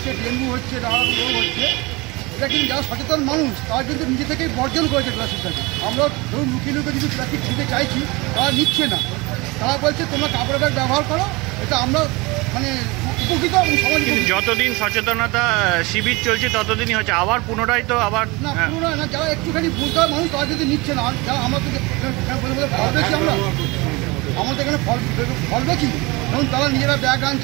ডেঙ্গু হচ্ছে, নানা রোগ হচ্ছে, এটা কিন্তু যারা সচেতন মানুষ তারা কিন্তু নিজে থেকেই বর্জন করেছে প্লাস্টিকটাকে। আমরা ধরুন লুকিয়ে লুকিয়ে যদি প্লাস্টিক ছিঁড়তে চাইছি, তারা নিচ্ছে না, তারা বলছে তোমরা কাপড়ের ব্যাগ ব্যবহার করো, এটা আমরা মানে উপকৃত এবং সমাজ। যতদিন সচেতনতা শিবির চলছে ততদিনই হচ্ছে, আবার পুনরায় তো আবার না, পুনরায় না, যারা একটুখানি বুঝতে হয় মানুষ তারা যদি নিচ্ছে না। যারা আমরা তো ফল বেশি, আমাদের এখানে ফল বেশি, ধরুন তারা নিজেরা ব্যাগ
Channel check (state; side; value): quieter; left; 24.5 dB